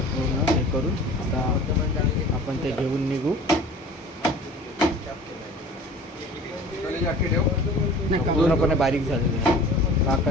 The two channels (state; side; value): normal; both; correlation 0.43